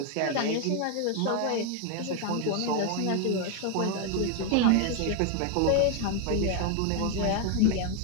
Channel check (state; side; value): different; both; correlation 0.01